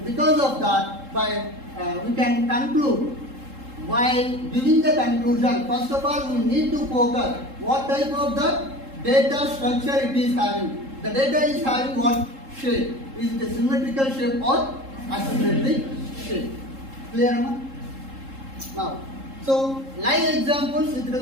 because of that, we can conclude. While giving the conclusion, first of all, we need to focus what type of the data structure it is having. The data is having what shape? Is it a symmetrical shape or asymmetric shape? Clear, Amma? Now, so live examples with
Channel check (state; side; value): late; left; 3.7 ms